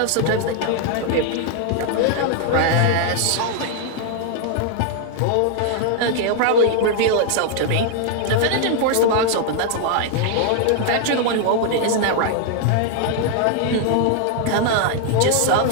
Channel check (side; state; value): both; different; correlation 0.00